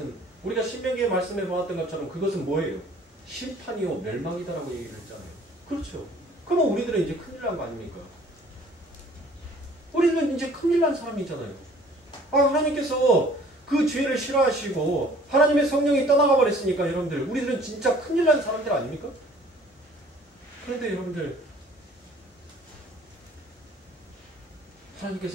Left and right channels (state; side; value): normal; both; correlation 0.53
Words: 우리가 신명기에 말씀해 보았던 것처럼 그것은 뭐예요? 심판이요 멸망이다라고 얘기를 했잖아요. 그렇죠. 그러면 우리들은 이제 큰일 난 거 아닙니까? 우리는 이제 큰일 난 사람이잖아요. 하나님께서 그 죄를 싫어하시고 하나님의 성령이 떠나가 버렸으니까 여러분들 우리들은 진짜 큰일 난 사람들 아닙니까? 그런데 여러분들